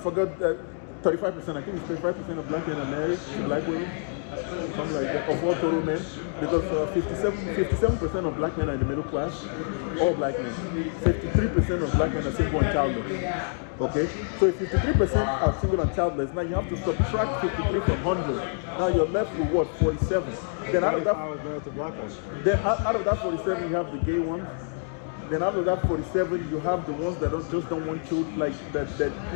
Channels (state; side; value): silent; right; 60 dB below the other